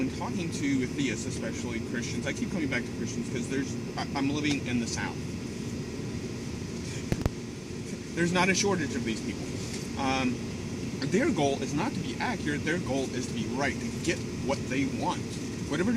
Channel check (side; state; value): both; identical; correlation 1.00